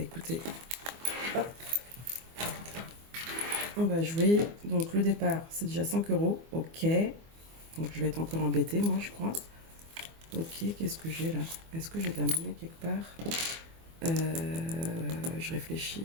hop. On va jouer. Donc le départ, c'est déjà 5 €. Ok. Donc je vais être encore embêtée, moi, je crois. Ok, qu'est-ce que j'ai là? Est-ce que j'ai de la monnaie quelque part? Je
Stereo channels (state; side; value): late; left; 24 ms